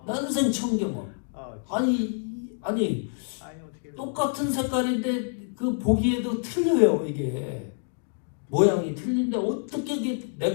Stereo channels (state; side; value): silent; right; 60 dB below the other